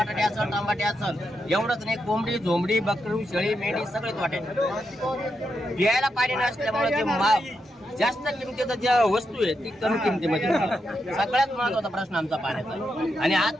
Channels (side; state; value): both; normal; correlation 0.84